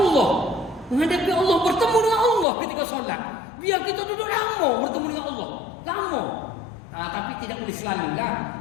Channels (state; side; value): drops out; right; at 2.5 s